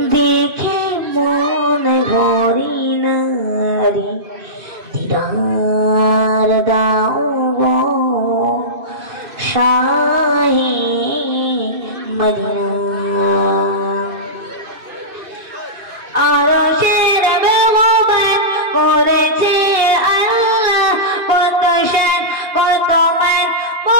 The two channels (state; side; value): late; left; 2.5 ms